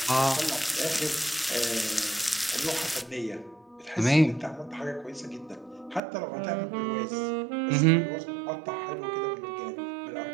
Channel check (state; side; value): drops out; left; at 6.0 s